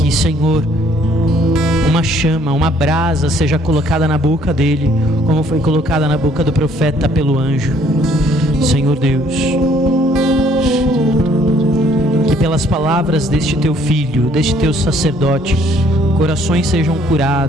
Senhor, uma chama, uma brasa seja colocada na boca dele, como foi colocada na boca do profeta pelo anjo. Senhor Deus, que pelas palavras deste teu filho, deste teu sacerdote, corações sejam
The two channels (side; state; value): both; normal; correlation 0.62